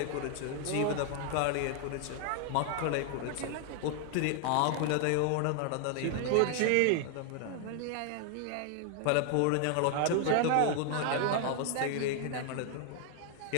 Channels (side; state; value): both; different; correlation 0.00